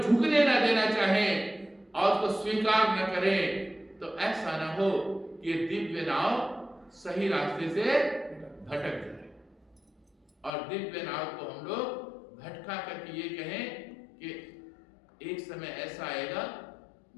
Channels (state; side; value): drops out; right; at 10.5 s